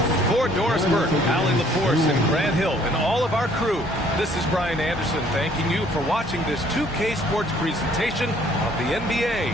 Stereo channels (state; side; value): normal; both; correlation 0.60